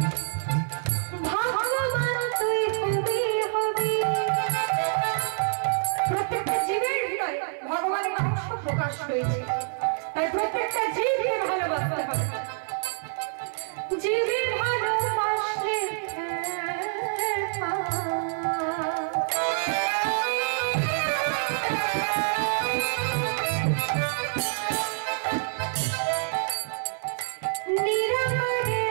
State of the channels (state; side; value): silent; left; digital silence